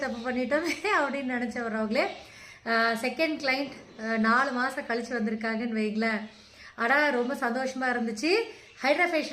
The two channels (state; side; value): identical; both; correlation 1.00